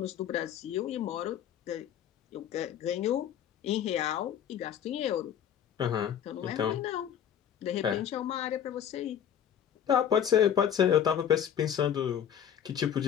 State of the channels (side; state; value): right; quieter; 9.3 dB